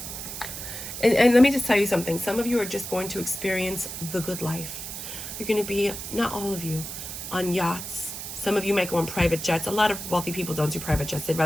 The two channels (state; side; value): noise; right; hiss, 8 dB below the sound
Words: And let me just tell you something. Some of you are just going to experience the good life. You're going to be, not all of you, on yachts. Some of you might go on private jets. A lot of wealthy people don't do private jets. They'd